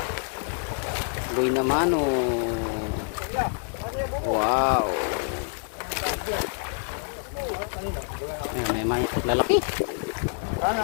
Boy naman oh. Wow. Ayan, may maya. Lalaki. Sana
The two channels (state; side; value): silent; right; 60 dB below the other